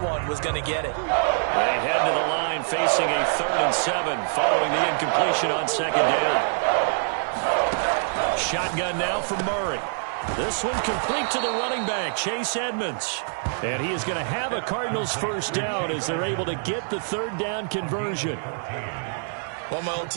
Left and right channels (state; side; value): silent; left; 62 dB below the other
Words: was going to get it. They head to the line facing a 3rd and 7 following the incompletion on 2nd down. Shotgun now for Murray. This one complete to the running back, Chase Edmonds. And he is going to have a Cardinals first down as they're able to get the 3rd down conversion. One of my old